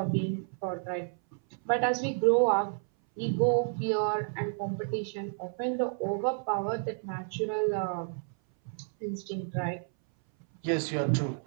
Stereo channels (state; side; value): silent; left; 57 dB below the other